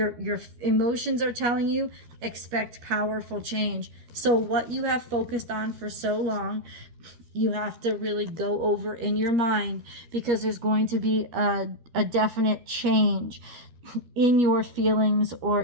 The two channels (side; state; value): left; late; 12 ms